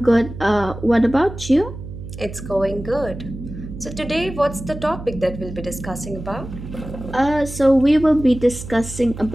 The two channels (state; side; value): noise; right; hum, 11 dB below the sound